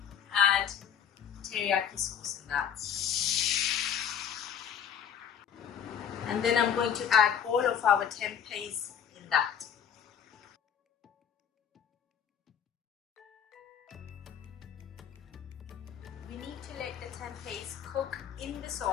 add teriyaki sauce in that. And then I'm going to add all of our tempehs in that. We need to let the tempehs cook in the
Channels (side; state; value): right; quieter; 8.3 dB